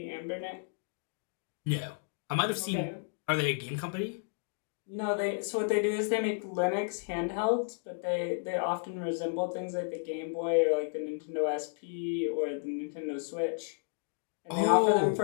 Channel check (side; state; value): right; silent; digital silence